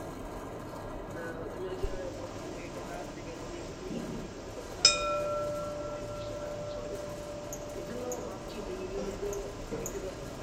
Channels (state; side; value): identical; both; correlation 1.00